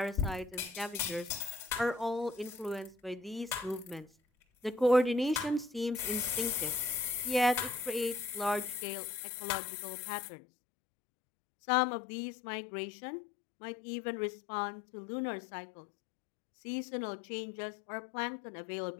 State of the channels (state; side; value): drops out; right; at 8.8 s